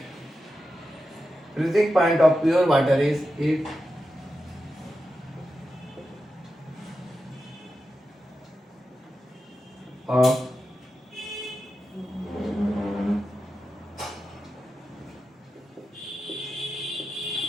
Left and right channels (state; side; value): normal; both; correlation 0.90